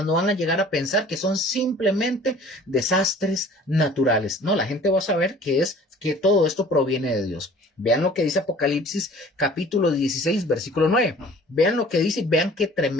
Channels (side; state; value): both; normal; correlation 0.49